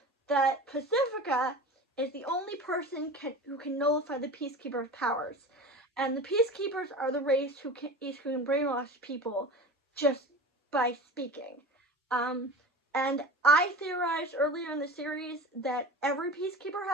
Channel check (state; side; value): normal; both; correlation 0.33